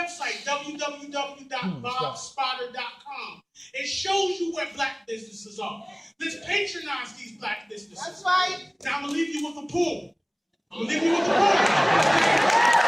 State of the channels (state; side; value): identical; both; correlation 1.00